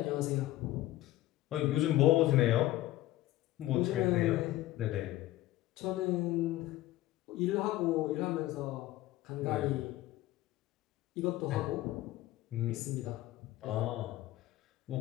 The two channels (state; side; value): quieter; right; 15.8 dB